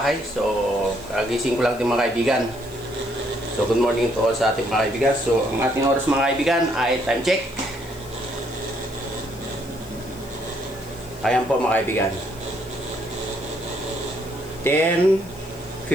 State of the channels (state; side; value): noise; left; hiss, 22 dB below the sound